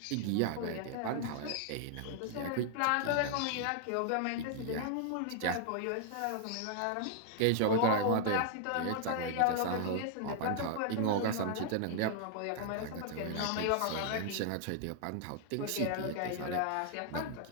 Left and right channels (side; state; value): both; different; correlation 0.00